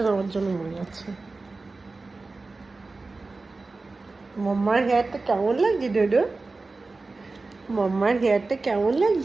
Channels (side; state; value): left; quieter; 3.6 dB